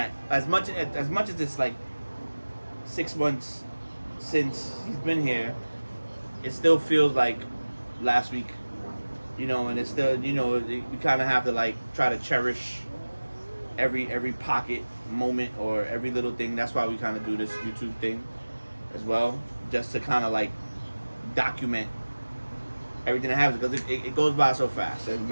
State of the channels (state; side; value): inverted; both; correlation -1.00